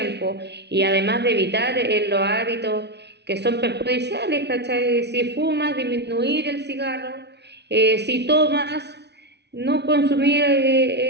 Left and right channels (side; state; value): left; late; 0.50 ms